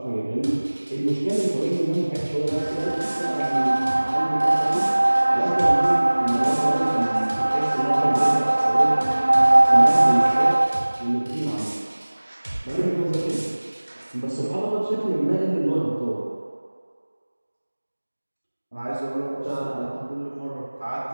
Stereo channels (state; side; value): inverted; both; correlation -1.00